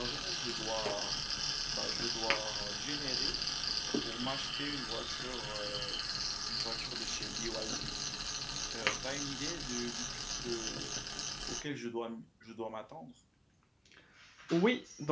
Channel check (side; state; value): both; identical; correlation 1.00